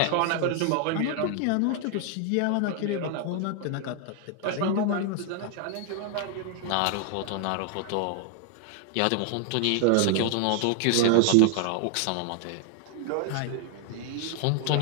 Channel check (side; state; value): both; different; correlation 0.00